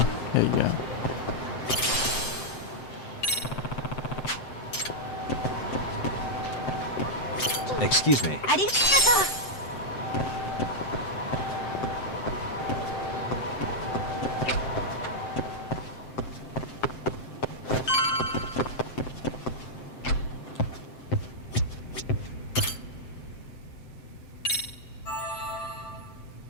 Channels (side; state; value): right; late; 7.7 ms